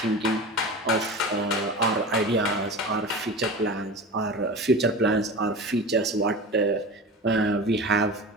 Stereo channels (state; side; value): normal; both; correlation 0.31